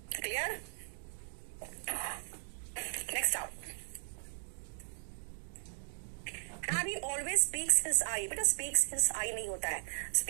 क्लियर। नेक्स्ट आओ, Harry always speaks his eye, बेटा speaks his eye नहीं होता है,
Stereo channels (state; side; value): silent; left; digital silence